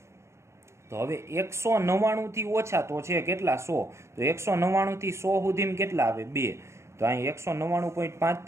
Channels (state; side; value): late; left; 0.13 ms